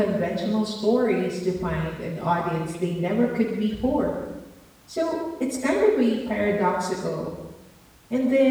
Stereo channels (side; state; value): both; identical; correlation 1.00